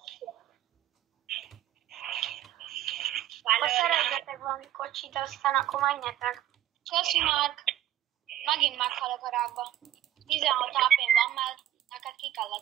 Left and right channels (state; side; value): quieter; left; 12.3 dB